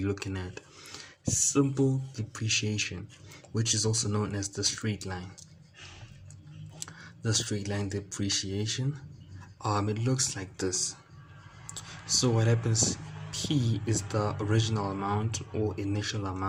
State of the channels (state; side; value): identical; both; correlation 1.00